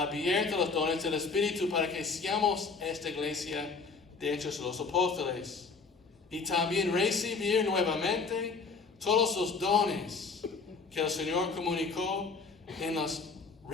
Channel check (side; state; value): right; quieter; 4.5 dB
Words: a los dones del Espíritu, para que seamos esta iglesia de Hechos de los Apóstoles. Y también recibir nuevamente todos los dones que el Señor comunicó en las